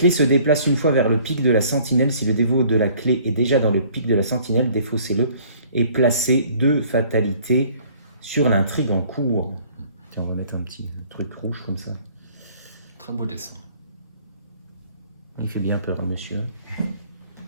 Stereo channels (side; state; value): both; inverted; correlation -0.56